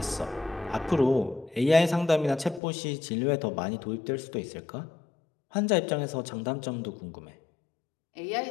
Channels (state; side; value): drops out; right; at 2.6 s